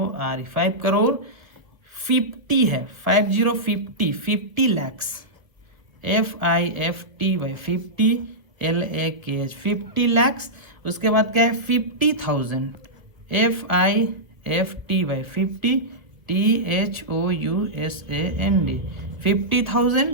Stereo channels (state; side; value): late; left; 1.6 ms